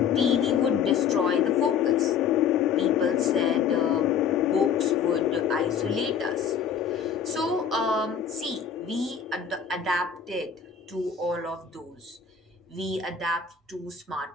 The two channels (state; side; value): quieter; right; 7.0 dB